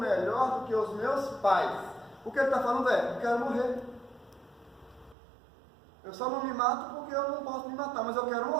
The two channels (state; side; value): drops out; left; at 5.2 s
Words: do que os meus pais. O que ele está falando eu quero morrer. Eu só não me mato porque eu não posso me matar, mas eu quero